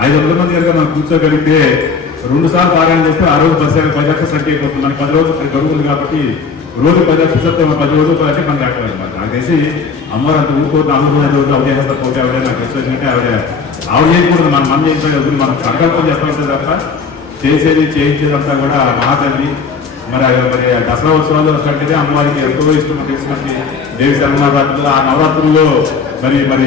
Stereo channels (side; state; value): right; quieter; 5.1 dB